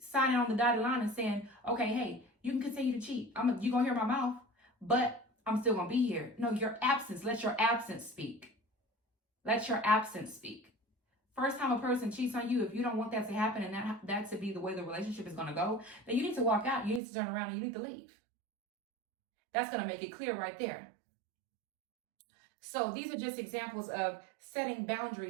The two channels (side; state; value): left; drops out; at 17.0 s